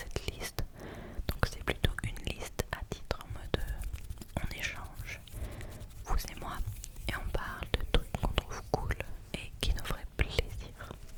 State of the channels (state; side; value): identical; both; correlation 1.00